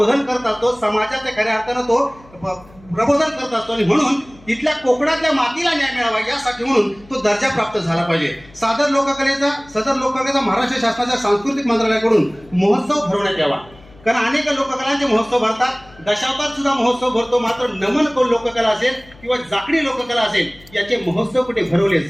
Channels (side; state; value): left; noise; hum, 25 dB below the sound